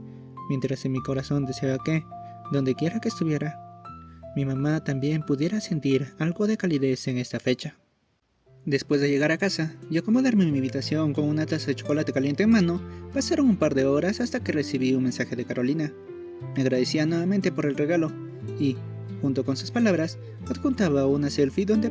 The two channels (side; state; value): both; identical; correlation 1.00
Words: mientras en mi corazón deseaba que, donde quiera que estuviera, mi mamá también pudiera sentir algo de calidez en esta fecha. Después de llegar a casa y acomodarme en mi habitación con una taza de chocolate caliente en mano, pasaron un par de horas hasta que recibí un mensaje de Carolina. Me agradecía nuevamente por el regalo y, junto con sus palabras, adjuntaba una selfie donde